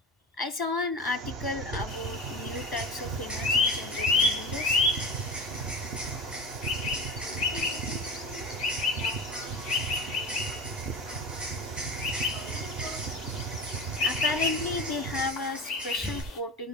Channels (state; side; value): normal; both; correlation 0.30